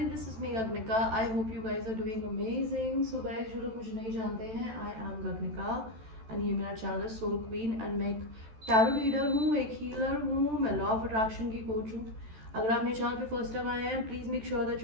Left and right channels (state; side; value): late; left; 14 ms